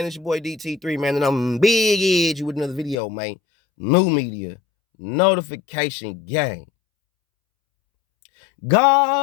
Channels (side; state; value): right; drops out; at 3.0 s